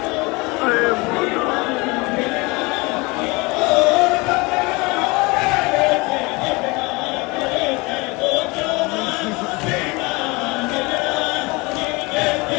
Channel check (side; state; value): right; quieter; 25.5 dB